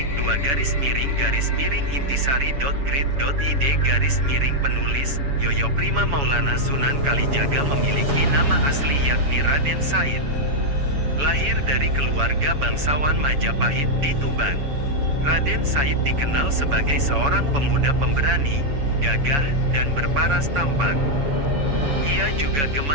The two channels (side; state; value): left; late; 7.1 ms